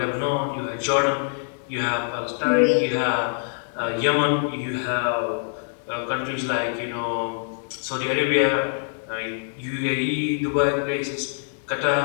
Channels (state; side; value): silent; right; digital silence